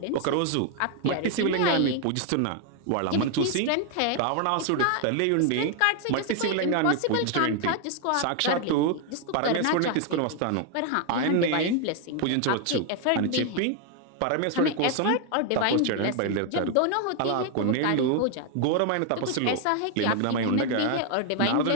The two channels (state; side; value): different; both; correlation 0.00